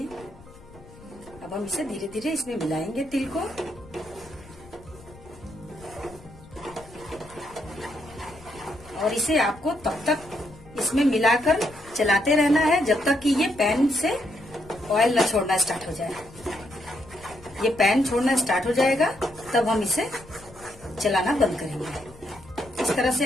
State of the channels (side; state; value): left; noise; rumble, 21 dB below the sound